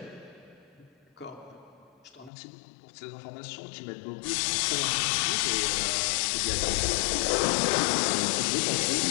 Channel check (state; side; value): drops out; right; at 2.3 s